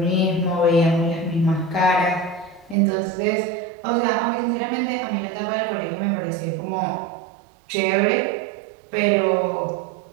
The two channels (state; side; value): drops out; left; at 2.8 s